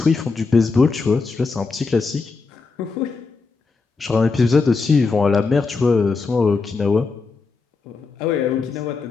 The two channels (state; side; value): quieter; right; 4.4 dB